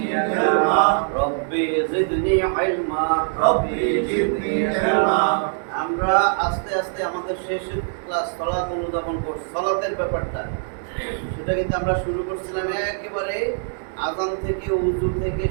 ইলমা। রব্বি জিদনি ইলমা। রব্বি জিদনি ইলমা। আমরা আস্তে আস্তে আমাদের শেষ ক্লাস সালাত অনুধাবন করছি, সালাতের ব্যাপারটা সেটা কিন্তু আমরা শুরু করছিলাম একেবারে আযান থেকে, ওযু থেকে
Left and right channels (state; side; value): silent; left; digital silence